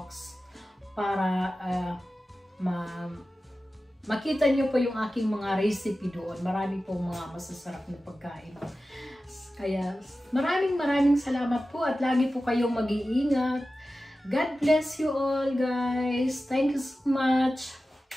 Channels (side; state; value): both; normal; correlation 0.94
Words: para makita niyo po yung aking mga recipe doon. Marami pong mga masasarap na pagkain. Kaya maraming salamat po at lagi po kayong mag-iingat. God bless you all, guys. Thank you so much.